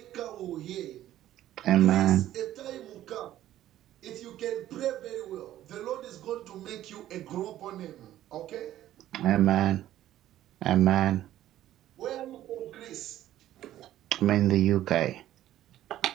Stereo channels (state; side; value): quieter; left; 13.1 dB